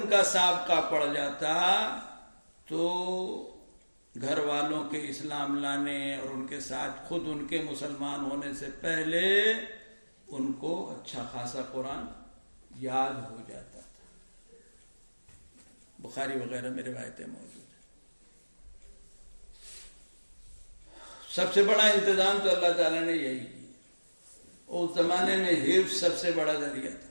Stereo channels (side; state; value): both; inverted; correlation -1.00